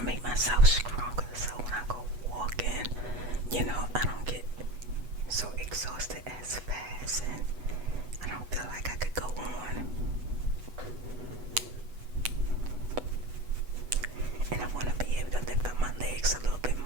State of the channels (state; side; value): late; left; 8.2 ms